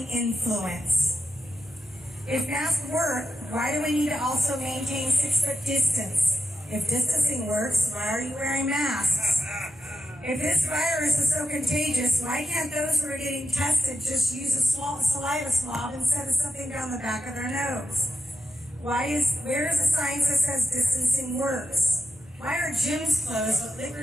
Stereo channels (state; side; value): normal; both; correlation 0.88